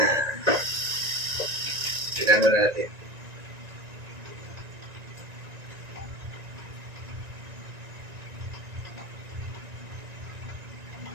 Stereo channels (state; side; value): late; left; 1.9 ms